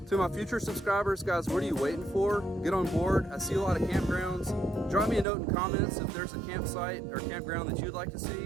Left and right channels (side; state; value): left; drops out; at 5.2 s